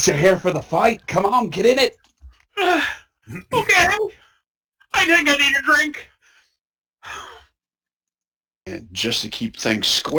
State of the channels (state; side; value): identical; both; correlation 1.00